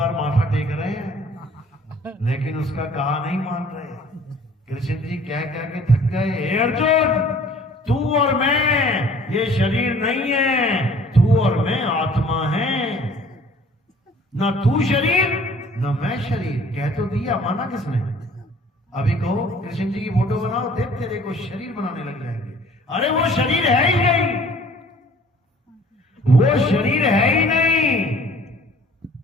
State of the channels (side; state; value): both; normal; correlation 0.53